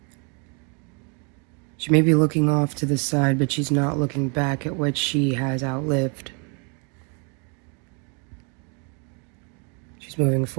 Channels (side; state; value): left; quieter; 35.7 dB